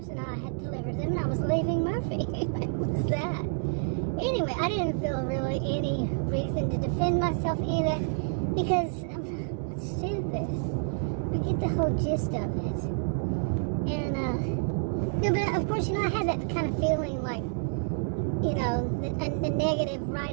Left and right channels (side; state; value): left; silent; digital silence